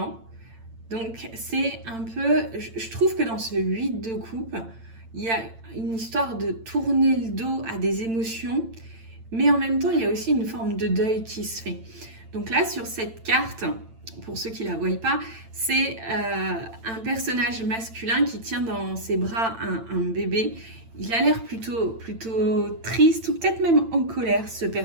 Donc c'est un peu, je trouve que dans ce 8 de coupe, il y a une histoire de tourner le dos à des émotions, mais en même temps il y a aussi une forme de deuil qui se fait. Donc là, sur cette carte, pour ceux qui ne la voient pas, c'est un personnage masculin qui tient dans ses bras un bébé. Il a l'air plutôt triste ou peut-être même en colère, ce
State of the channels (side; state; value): left; late; 8.9 ms